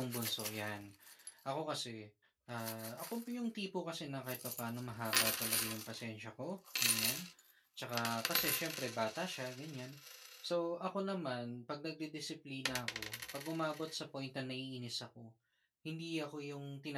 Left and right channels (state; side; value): identical; both; correlation 1.00